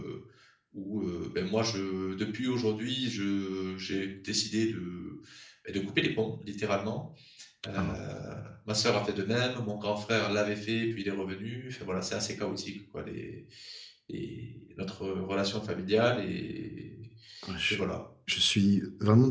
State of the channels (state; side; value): identical; both; correlation 1.00